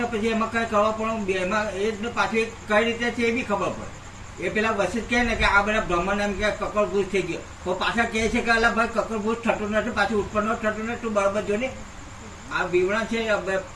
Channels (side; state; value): both; identical; correlation 1.00